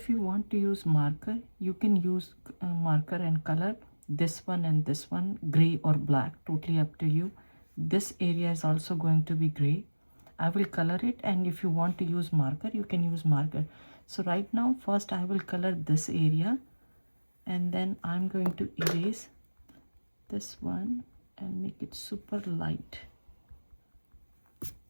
you want to use marker, you can use marker and color this one and this one gray or black, totally up to you. This area is also going to be gray. I will color it, and if you want to use marker, you can use marker. So right now first I will color this area, and then I'm going to erase this one and make it super light.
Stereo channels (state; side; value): inverted; both; correlation -1.00